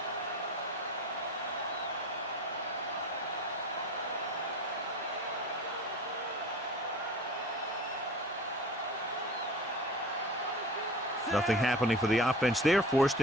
Nothing happening for the offense. They're forced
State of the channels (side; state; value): both; normal; correlation 0.38